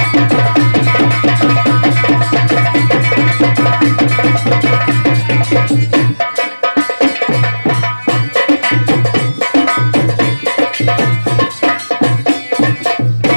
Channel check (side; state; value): both; inverted; correlation -1.00